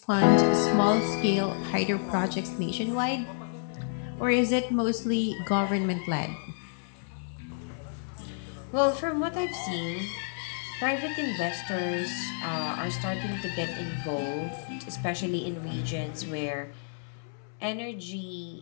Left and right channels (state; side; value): silent; right; 58 dB below the other